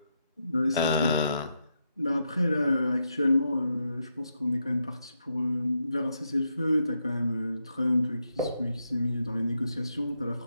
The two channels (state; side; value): inverted; both; correlation -0.82